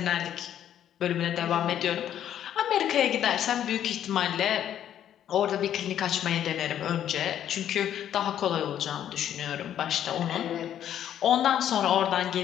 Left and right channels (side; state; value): right; quieter; 10.5 dB